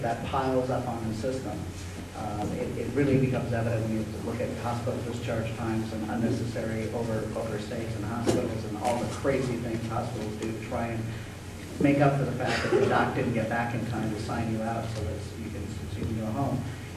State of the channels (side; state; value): both; identical; correlation 1.00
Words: that piles up on the system, it really becomes evident when you look at hospital discharge times and unnecessary overstays in hospitals and all the crazy things hospitals do to try and make up for the fact that the doc didn't get back in time to sign you out so that you can go home.